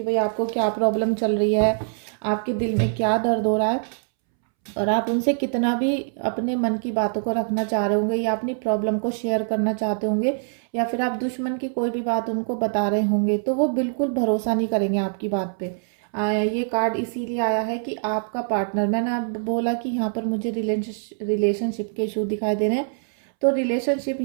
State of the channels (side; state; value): left; silent; 63 dB below the other